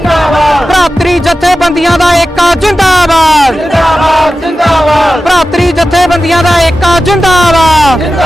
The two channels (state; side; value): normal; both; correlation 0.93